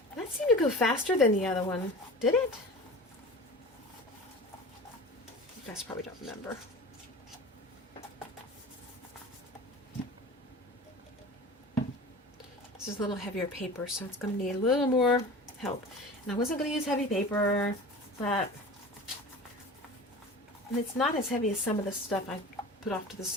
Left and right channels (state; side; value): normal; both; correlation 0.36